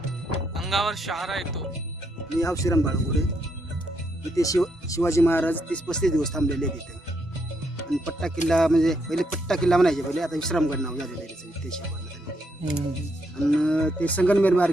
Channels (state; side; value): normal; both; correlation 0.77